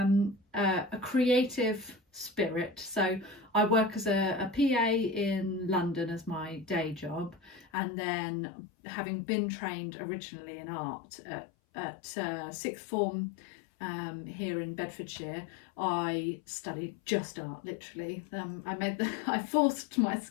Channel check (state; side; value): drops out; right; at 7.7 s